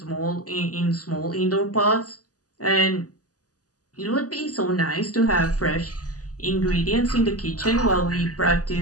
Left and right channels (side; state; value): right; late; 0.67 ms